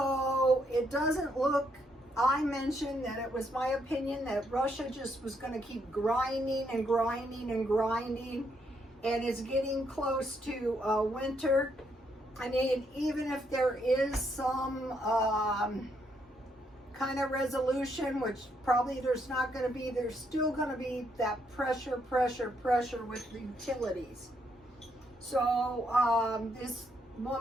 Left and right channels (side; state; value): both; normal; correlation 0.75